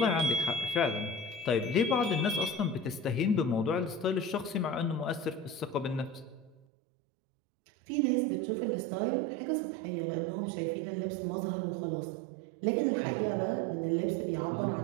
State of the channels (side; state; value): left; drops out; at 6.6 s